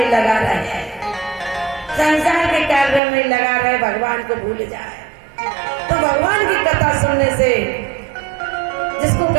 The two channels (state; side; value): drops out; left; at 3.0 s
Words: लगा रहे, संसार के कार्य में लगा रहे, भगवान को भूल जाए। तो भगवान की कथा सुनने से जिसको